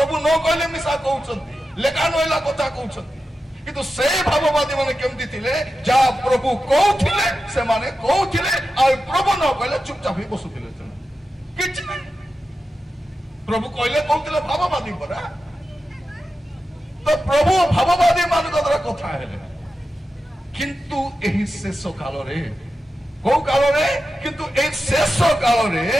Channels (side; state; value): both; normal; correlation 0.91